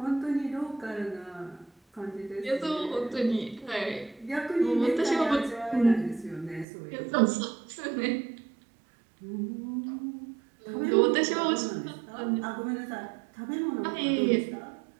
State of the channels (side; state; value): left; drops out; at 6.7 s